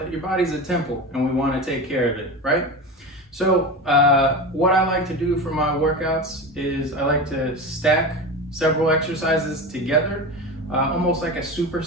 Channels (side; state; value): both; normal; correlation 0.25